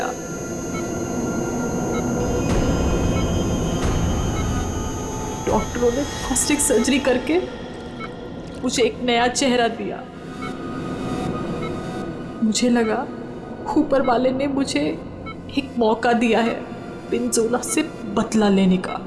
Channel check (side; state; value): both; identical; correlation 1.00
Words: डॉक्टरों ने प्लास्टिक सर्जरी करके मुझे एक नया चेहरा दिया। मुझे लगा ऊपर वाले ने मुझे एक मौका दिया है पिंजोला से बदला लेने का।